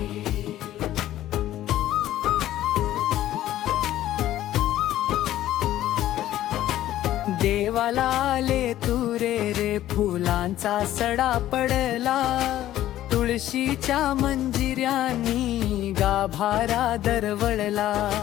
देवाला आले तुरे रे, फुलांचा सडा पडला. तुळशीच्या मंजिऱ्यांनी गाभारा दरवळला.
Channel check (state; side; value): quieter; right; 13.4 dB